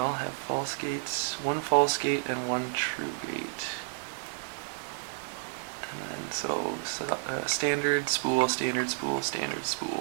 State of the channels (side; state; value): left; silent; digital silence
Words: have false gates. One false gate and one true gate. And then standard, spool, standard, spool, standard,